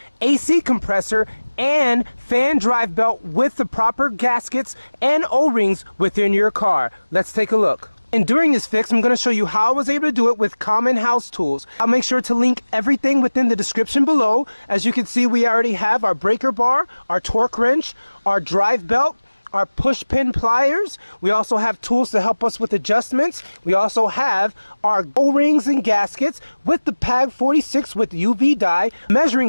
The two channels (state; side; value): inverted; both; correlation -1.00